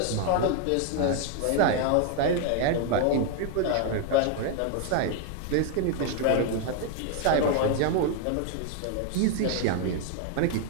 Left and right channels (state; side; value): different; both; correlation 0.00